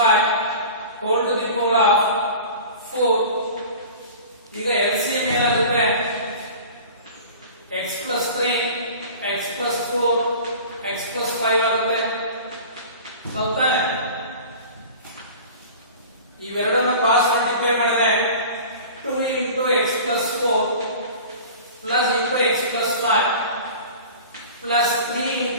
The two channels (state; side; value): inverted; both; correlation -0.39